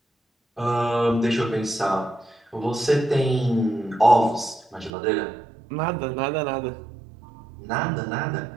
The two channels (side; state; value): left; drops out; at 4.9 s